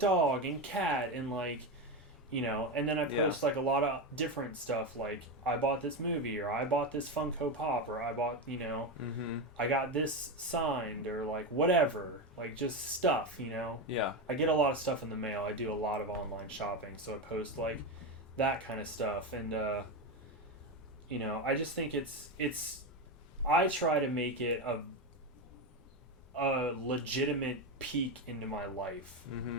and cat and like, and then I post like a lot of different stuff, like I bought this movie, or I bought this Funko Pop, or I bought, I got this signed, or like whatever, like just stuff, Yeah. I get a lot of stuff in the mail. I do a lot of online shopping, so I post like that kind of stuff, and I just think it's I try to make it a legitimate peek into my life,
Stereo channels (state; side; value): normal; both; correlation 0.15